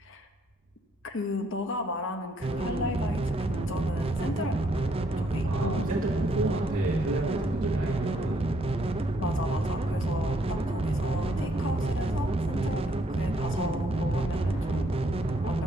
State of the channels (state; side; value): normal; both; correlation 0.70